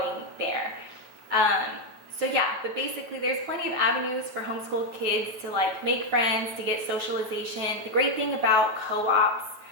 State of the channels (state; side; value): late; left; 9.1 ms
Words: there. So yeah, but basically there's plenty of avenues for homeschool kids to like make friends, to get socialization. The great thing about co-ops,